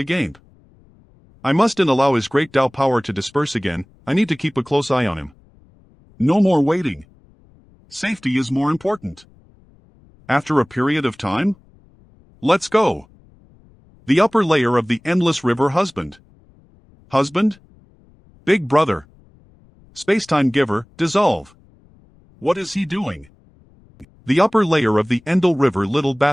I mustn't allow his great Tao power to disperse again. I need to keep a close eye on him. No more waiting. Safety is more important. After a period of time? Let's go. The upper layer of the endless river husband. Husband? Big brother. Spacetime giver, dissolve. What is he doing? The upper layer of the Endel River little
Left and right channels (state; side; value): noise; left; rumble, 29 dB below the sound